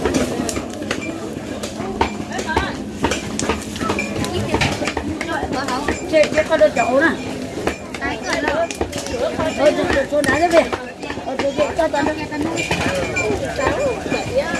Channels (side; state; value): both; identical; correlation 1.00